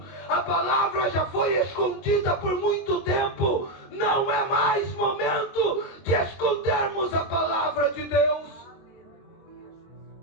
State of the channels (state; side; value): late; right; 22 ms